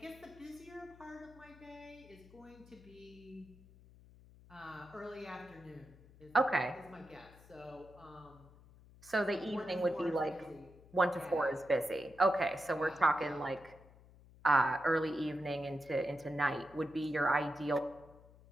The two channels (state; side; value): noise; left; hum, 23 dB below the sound